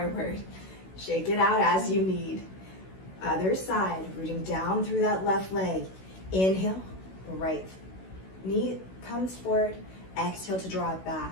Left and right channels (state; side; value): late; right; 16 ms